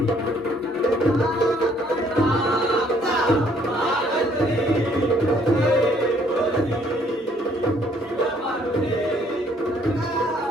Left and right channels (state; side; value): normal; both; correlation 0.64